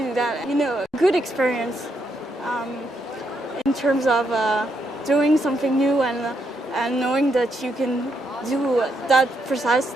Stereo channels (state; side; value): normal; both; correlation 0.78